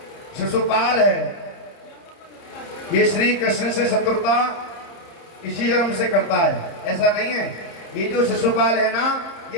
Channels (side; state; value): right; late; 30 ms